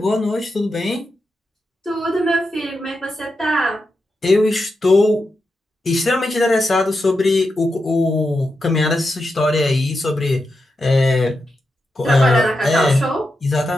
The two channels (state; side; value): normal; both; correlation 0.87